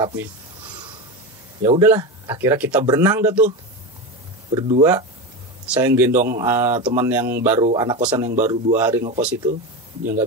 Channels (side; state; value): both; normal; correlation 0.19